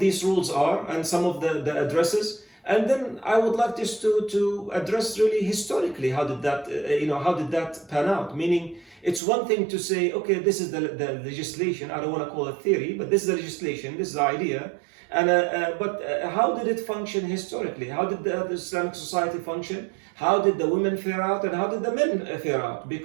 rules are and some of the addresses, and then I would like just to address really historically how did that pan out. Meaning, it's one thing to say, okay, this is the legislation. I don't want to call it theory, but this is the legislation, this is the idea. And but how did it function historically? How did the Islamic society function? How did the women fare out, and how did the men fare out?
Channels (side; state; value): left; drops out; at 9.2 s